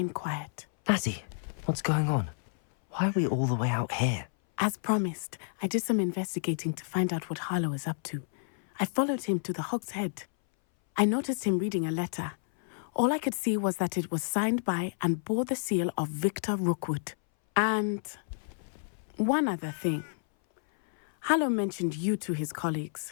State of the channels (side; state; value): right; silent; 58 dB below the other